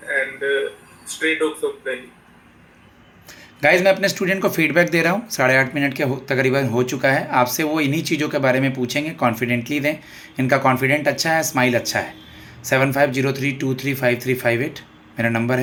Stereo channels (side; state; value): both; identical; correlation 1.00